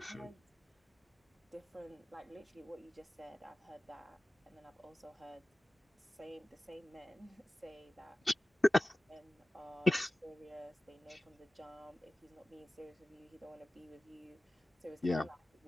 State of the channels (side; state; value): both; normal; correlation 0.96